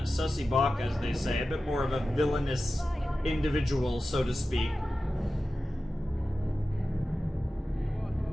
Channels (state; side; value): normal; both; correlation 0.94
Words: sussy bok, as they say. A bit more of a villainous individual, so to speak.